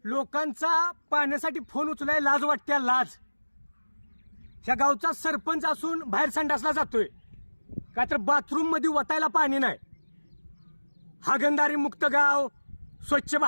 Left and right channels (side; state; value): both; inverted; correlation -1.00